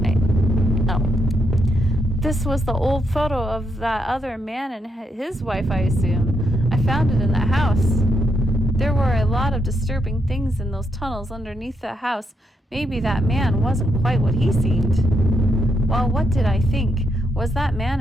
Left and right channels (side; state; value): both; normal; correlation 0.80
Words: wait. Oh. This was the old photo of that other man and his wife, I assume. I found it in that house. There were a lot of disturbing things in those tunnels underneath the house. Maybe that man wasn't quite what he seemed. Well, what did I think? Was that man